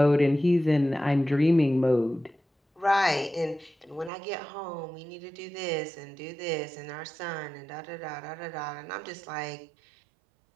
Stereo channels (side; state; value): left; drops out; at 4.1 s